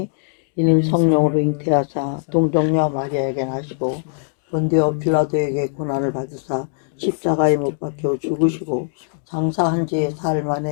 이는 성령으로 잉태하사 동정녀 마리아에게 나시고 본디오 빌라도에게 고난을 받으사 십자가에 못 박혀 죽으시고 장사한 지 사흘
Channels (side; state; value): right; silent; digital silence